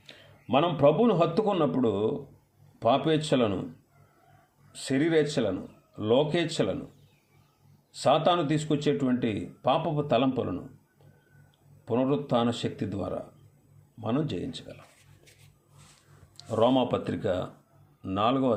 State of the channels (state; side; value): identical; both; correlation 1.00